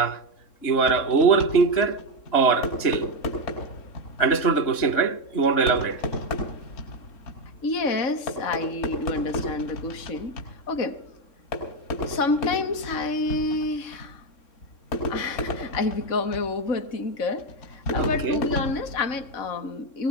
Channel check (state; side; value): late; right; 3.7 ms